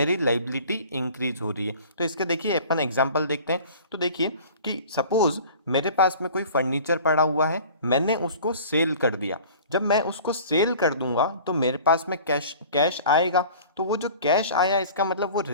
लाइबिलिटी इंक्रीज हो रही है। तो इसके देखिए अपन एग्जांपल देखते हैं। तो देखिए कि सपोज मेरे पास में कोई फर्नीचर पड़ा हुआ है, मैंने उसको सेल कर दिया। जब मैं उसको सेल कर दूंगा तो मेरे पास में कैश आएगा। तो वो जो कैश आया इसका मतलब वो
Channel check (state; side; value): inverted; both; correlation -0.44